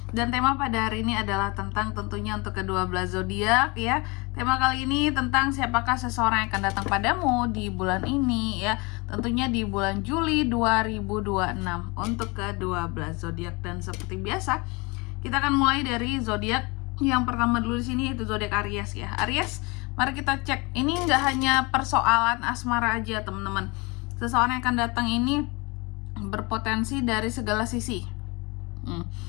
Dan tema pada hari ini adalah tentang tentunya untuk kedua belas zodiak ya. Tema kali ini tentang siapakah seseorang yang akan datang padamu di bulan ini ya. Tentunya di bulan Juli 2026 untuk kedua belas zodiak. Dan seperti biasa, kita akan mulai dari zodiak yang pertama dulu di sini, yaitu zodiak Aries ya. Aries, mari kita cek. Ini nggak hanya persoalan asmara aja teman-teman. Seseorang yang akan datang ini berpotensi dari segala sisi.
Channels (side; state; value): right; quieter; 27.3 dB